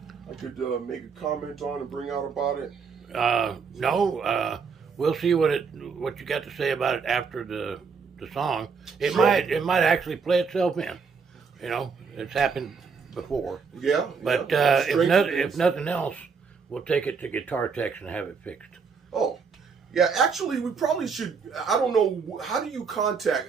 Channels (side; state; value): left; quieter; 5.5 dB